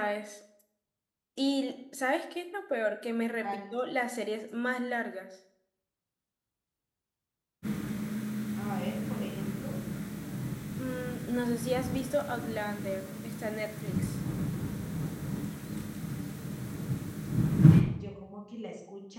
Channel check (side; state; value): both; identical; correlation 1.00